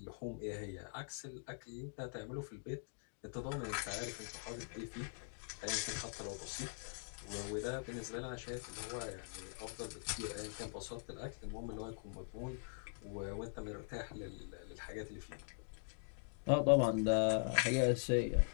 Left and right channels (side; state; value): right; silent; digital silence